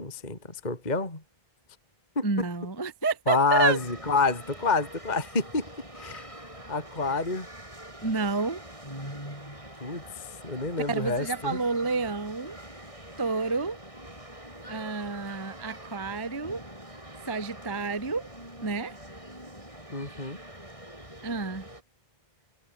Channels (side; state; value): right; late; 2.0 ms